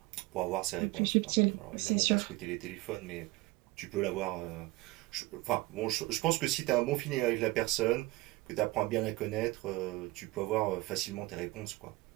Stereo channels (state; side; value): quieter; left; 21.0 dB